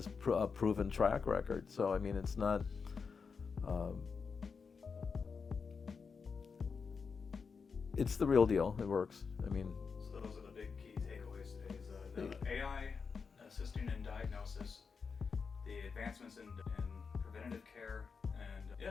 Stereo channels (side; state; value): right; quieter; 5.4 dB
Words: a proven track record. So, I mean, it's not... it's the real deal. It works. I mean... So those are the big key takeaways today. Is the AI assisting in diagnosis, the advancements in preventative care, and